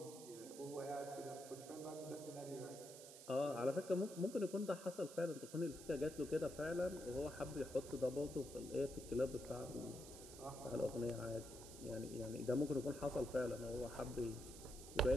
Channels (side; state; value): right; noise; hiss, 14 dB below the sound